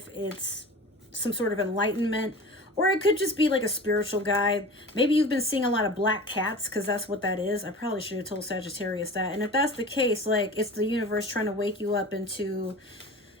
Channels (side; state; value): both; normal; correlation 0.36